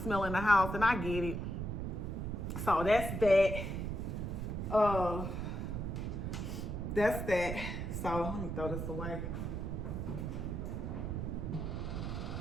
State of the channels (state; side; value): noise; right; rumble, 3 dB below the sound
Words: in the house, and I get it. So that's that. That's that. So let me throw this away.